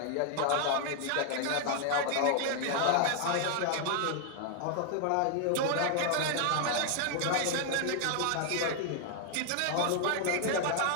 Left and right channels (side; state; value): both; different; correlation 0.00